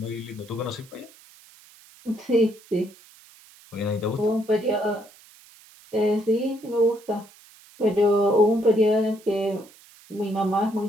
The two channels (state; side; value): noise; right; hiss, 25 dB below the sound